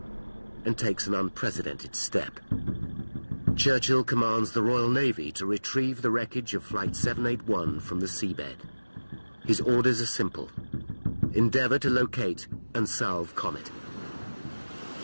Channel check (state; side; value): inverted; both; correlation -1.00